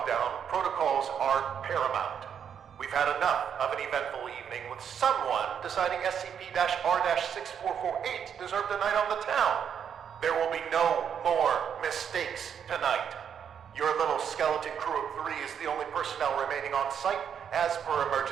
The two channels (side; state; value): left; quieter; 8.0 dB